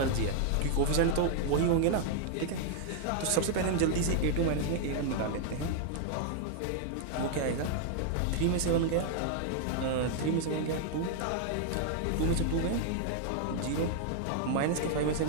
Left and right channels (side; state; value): both; different; correlation 0.00